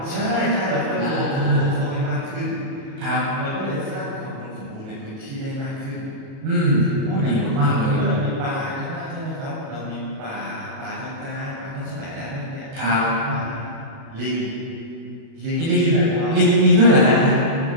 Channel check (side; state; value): left; late; 37 ms